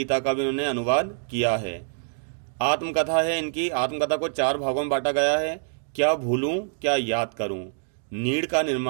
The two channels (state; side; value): silent; left; digital silence